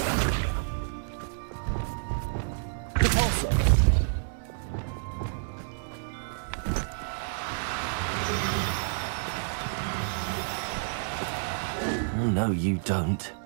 Repulsor. Oh, no, you don't.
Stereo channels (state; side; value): silent; left; 58 dB below the other